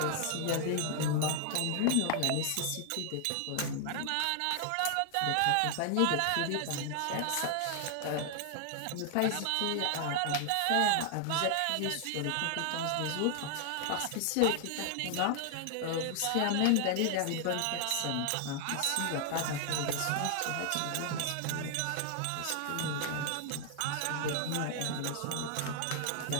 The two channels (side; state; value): both; different; correlation 0.00